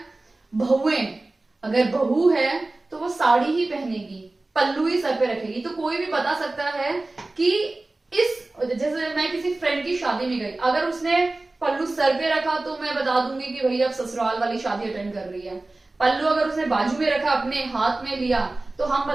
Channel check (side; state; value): left; quieter; 3.0 dB